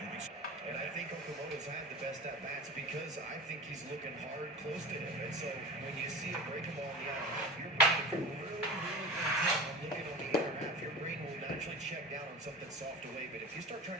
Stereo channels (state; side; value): normal; both; correlation 0.33